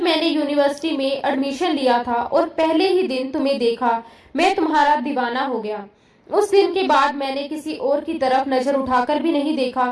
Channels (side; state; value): both; identical; correlation 1.00